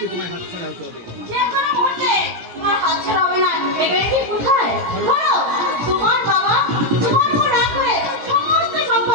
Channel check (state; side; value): late; left; 17 ms